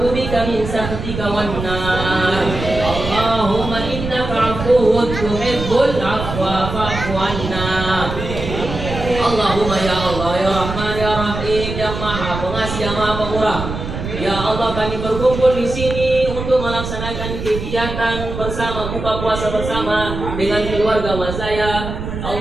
bika min sakhatika wan nar. Allahumma innaka 'afuwwun tuhibbul 'afwa fa'fu 'anna. Allahumma ya Allah ya Rahman ya Rahim ya Maha Pengasih yang Maha Pemurah. Ya Allah, kami berkumpul di sini untuk melaksanakan kegiatan bersama buka puasa bersama dengan keluarga Mazaya.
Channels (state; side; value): noise; right; rumble, 6 dB below the sound